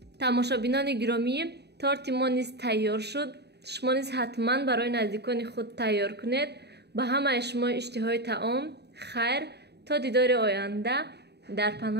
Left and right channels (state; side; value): late; left; 0.48 ms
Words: тамошобинони гиромӣ, торти мо низ тайёр шуд. шумо низ ҳатман барои наздикони худ тайёр кунед. ба ҳамаи шумо иштиҳои таом хайр. то дидори оянда. дар